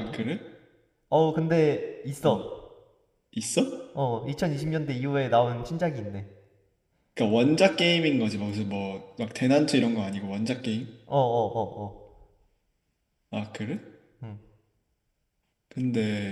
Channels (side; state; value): both; identical; correlation 1.00